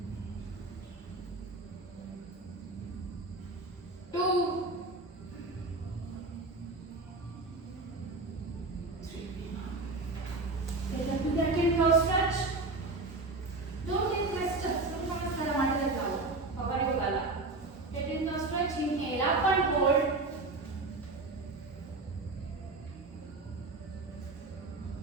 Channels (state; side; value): quieter; left; 3.2 dB